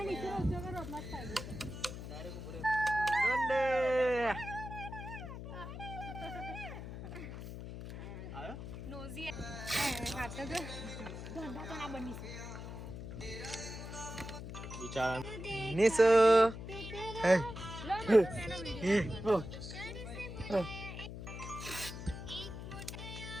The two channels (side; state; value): left; noise; hum, 9 dB below the sound